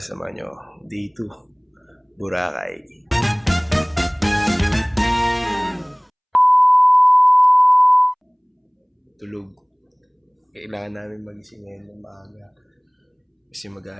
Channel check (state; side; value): identical; both; correlation 1.00